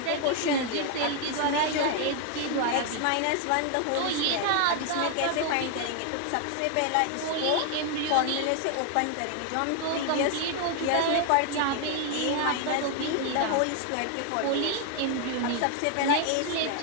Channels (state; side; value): different; both; correlation 0.00